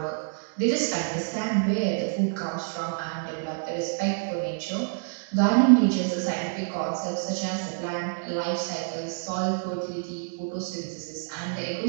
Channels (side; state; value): left; silent; digital silence